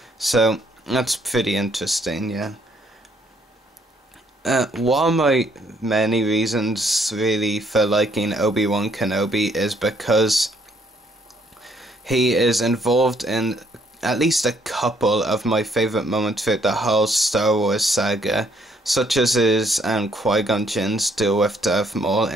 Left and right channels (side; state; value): both; normal; correlation 0.67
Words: So that's pretty interesting, yeah. One of my many reasons really for liking Obi-Wan Kenobi is because he is involved in at least a couple of my favourite moments throughout the whole Star Wars saga, such as his Qui-Gon Jinn's duel with Darth Maul